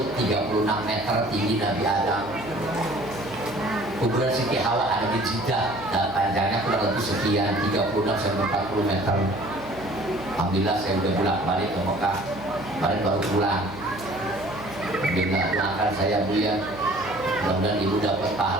36 meter tinggi Nabi Adam. Kuburan Siti Hawa ada di Jeddah dan panjangnya kurang lebih sekian 36 sampai 40 meter. Alhamdulillah saya udah bolak-balik ke Mekah, kemarin baru pulang. Alhamdulillah, doakan saya Bu ya, mudah-mudahan ibu dapat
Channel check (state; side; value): noise; right; hum, 15 dB below the sound